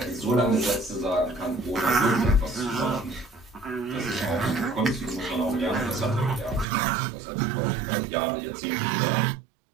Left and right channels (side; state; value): left; drops out; at 6.7 s